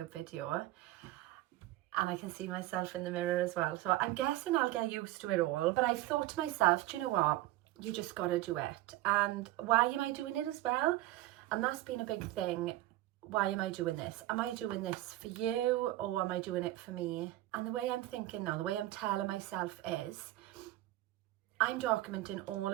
video, and I can see myself in the mirror as well. So I'm guessing I'll get used to it all. But I've thought to myself, do you know what? You just got to do it. And why am I doing it as well? And that's been a big thing. Why am I doing this? Am I doing this for you, or am I doing it for me? And the way I'm thinking now, the way I'm telling myself is, I'm documenting all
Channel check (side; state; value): left; quieter; 16.4 dB